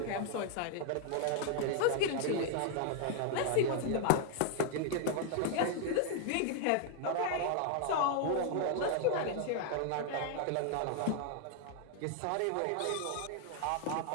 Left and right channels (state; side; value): different; both; correlation 0.00